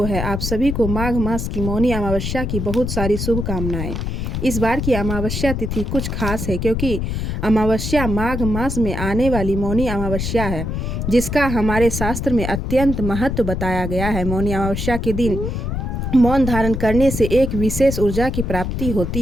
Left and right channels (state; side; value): noise; left; rumble, 3 dB below the sound